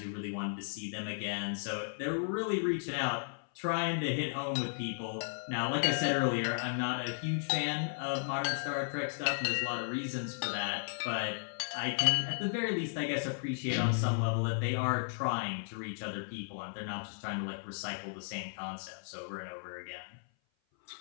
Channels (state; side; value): silent; right; 54 dB below the other